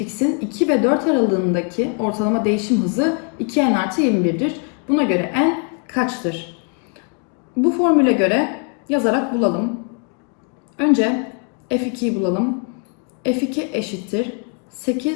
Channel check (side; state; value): right; quieter; 39.6 dB